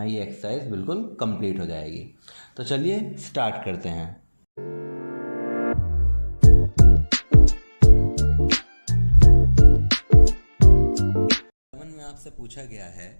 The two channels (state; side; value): inverted; both; correlation -1.00